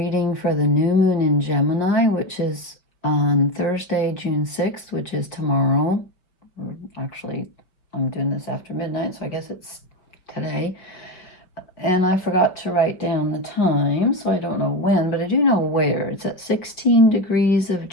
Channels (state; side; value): late; right; 5.3 ms